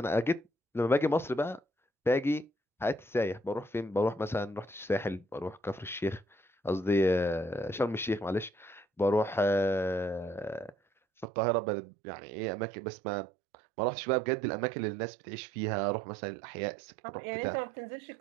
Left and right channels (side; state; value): left; drops out; at 11.2 s